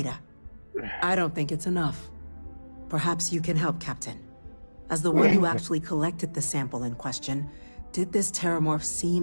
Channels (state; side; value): inverted; both; correlation -1.00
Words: I don't think it's enough. Perhaps you can help, Captain. As the one who actually collected the sample in question, did this terramorph